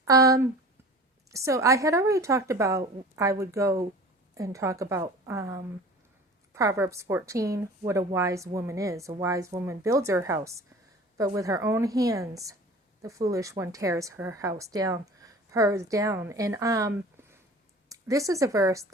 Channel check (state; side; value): normal; both; correlation 0.41